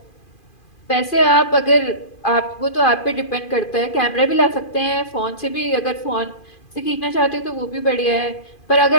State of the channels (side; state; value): right; late; 2.4 ms